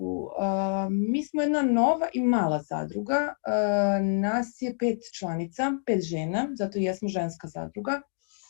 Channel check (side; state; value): right; silent; digital silence